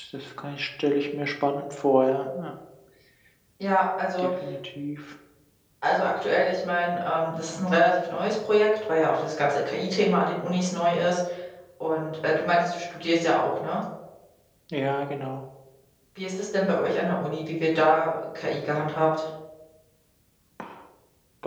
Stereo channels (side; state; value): both; identical; correlation 1.00